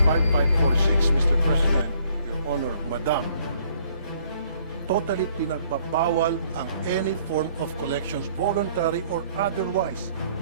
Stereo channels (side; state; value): both; inverted; correlation -0.63